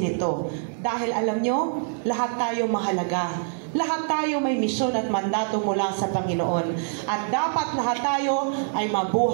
ito. Dahil alam nyo, lahat tayo mahalaga. Lahat tayo may misyon at mandato mula sa Panginoon. At dapat lahat tayo ay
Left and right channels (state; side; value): silent; left; digital silence